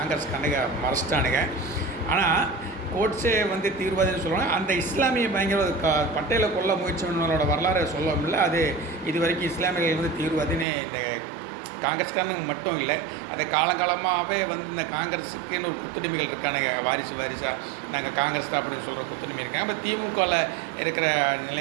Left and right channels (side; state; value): left; drops out; at 10.7 s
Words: கணக்க மறைச்சிட்டானுங்க. ஆனால் கோட்ஸே தீவிரவாதின்னு சொல்லுவாங்க. அந்த இஸ்லாமிய பயங்கர பட்டேலை கொல்ல முயற்சி பண்ணவங்களோட வரலாறு சொல்ல முடியல. அது இது வரைக்கும் இஸ்லாமியர்கள் தீவிரவாதின்னு இந்த காங்கிரஸ்காரனுங்க மட்டும் இல்லை, அதை காலங்காலமாகவே இந்த காங்கிரஸுக்குன்னு ஒரு குத்துடிமைகள் இருக்கானுங்க. வாரிசாக நாங்கள் காங்கிரஸ் தான் அப்படின்னு சொல்கிற குத்துடிமை இருக்காங்க. இப்போ திமுகவில் இருக்கிற